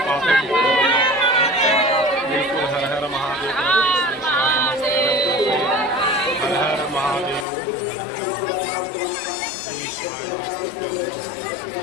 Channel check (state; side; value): drops out; right; at 7.5 s